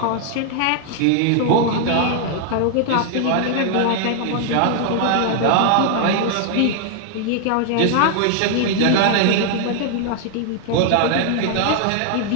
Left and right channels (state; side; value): different; both; correlation 0.00